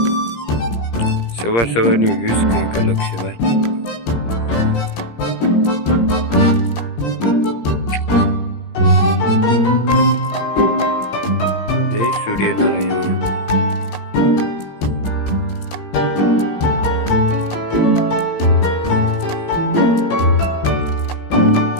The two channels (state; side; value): late; right; 17 ms